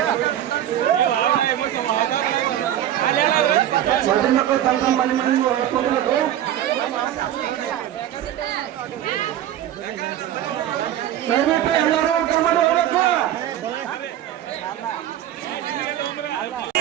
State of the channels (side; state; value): left; quieter; 11.7 dB